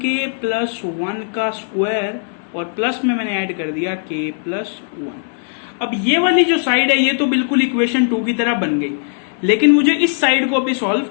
+ 1 का स्क्वायर, और प्लस में मैंने ऐड कर दिया k + 1। अब ये वाली जो साइड है ये तो बिल्कुल इक्वेशन 2 की तरह बन गई, लेकिन मुझे इस साइड को अभी सॉल्व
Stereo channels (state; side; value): silent; right; 64 dB below the other